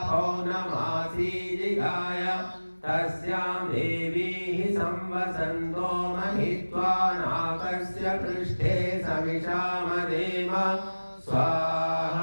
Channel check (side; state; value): both; inverted; correlation -1.00